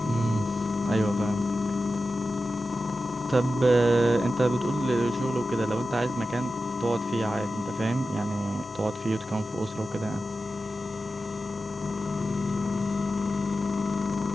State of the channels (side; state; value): both; normal; correlation 0.92